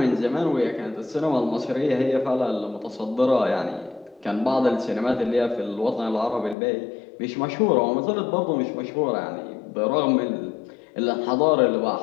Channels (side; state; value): right; drops out; at 6.6 s